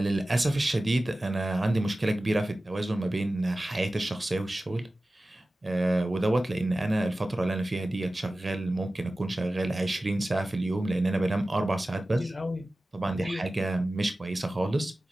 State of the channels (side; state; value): both; normal; correlation 0.96